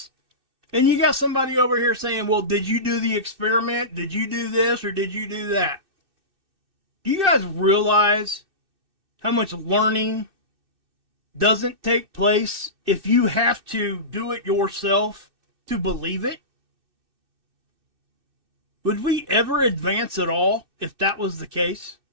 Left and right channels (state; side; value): late; left; 2.6 ms